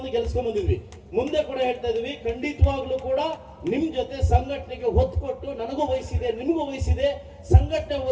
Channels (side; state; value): both; identical; correlation 1.00